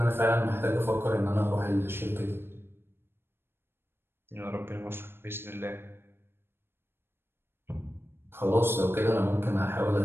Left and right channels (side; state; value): left; late; 0.11 ms